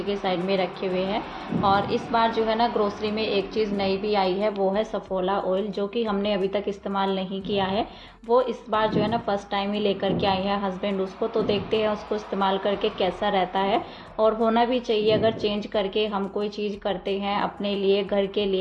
के साइड में रखे हुए हैं। और इस बार जो है ना ग्रोसरी में एक चीज़ नई भी आई है, वो है सफोला ऑयल, जो कि हमने अभी तक इस्तेमाल नहीं किया है। वो इस बार जो है ना फर्स्ट टाइम ही लेकर के आई है हस्बैंड उसको, तो देखते हैं उसको इस्तेमाल करके कैसा रहता है। और होना भी चाहिए, अगर चेंज करके हम कोई चीज़ करते हैं अपने लिए, घर के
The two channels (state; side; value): identical; both; correlation 1.00